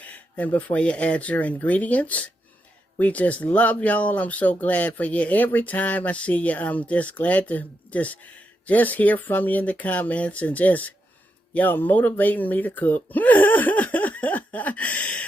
And before you add your ingredients, we just love y'all. I'm so glad for you. Every time I see you, I'm just glad to just hear from you in the comments and just y'all motivating me to cook.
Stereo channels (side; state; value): both; normal; correlation 0.84